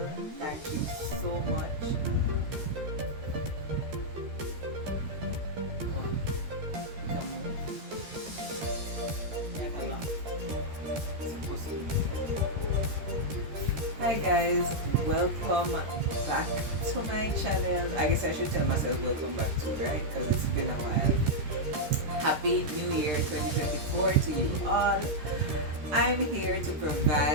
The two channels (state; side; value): late; left; 13 ms